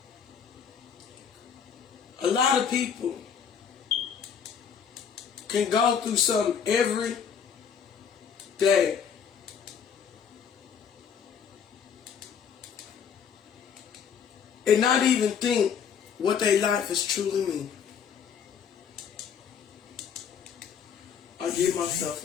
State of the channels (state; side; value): quieter; right; 7.3 dB